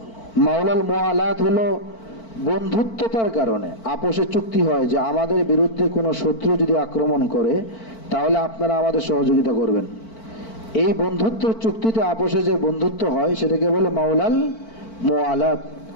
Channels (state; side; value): late; right; 4.5 ms